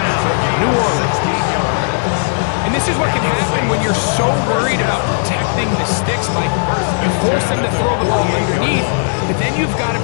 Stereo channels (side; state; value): right; silent; digital silence